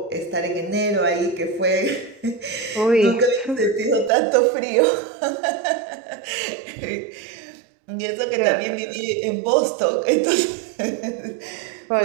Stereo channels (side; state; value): left; drops out; at 4.1 s